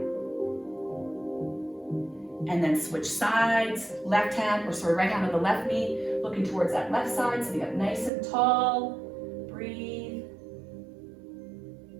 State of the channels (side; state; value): left; drops out; at 8.1 s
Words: And then switch sides. Left hand, right hand on the left knee, looking towards that left side, sitting up nice and tall. Breathe.